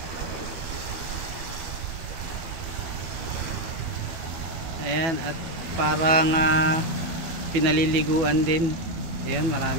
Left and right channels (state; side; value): late; left; 12 ms